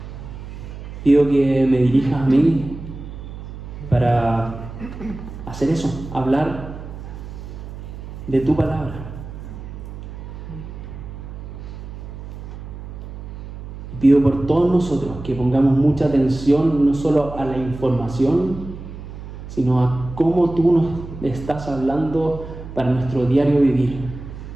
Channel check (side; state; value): right; noise; hum, 12 dB below the sound